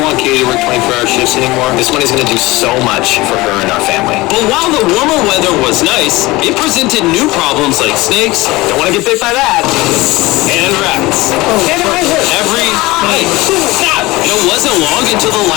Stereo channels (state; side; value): quieter; right; 20.6 dB